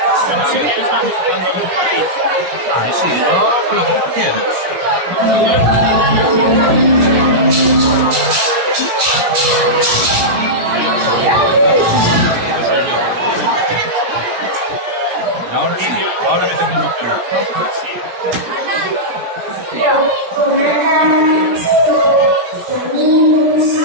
Vale. Ah, sí, yo con lo que tú quieras. Ahora sí, ahora que tengo mucho cuidado.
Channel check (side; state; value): left; late; 17 ms